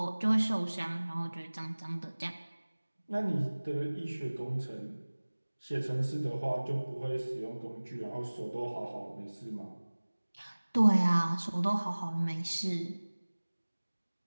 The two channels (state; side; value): inverted; both; correlation -1.00